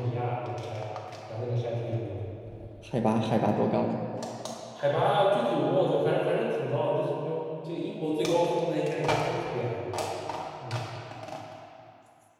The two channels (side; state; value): both; identical; correlation 1.00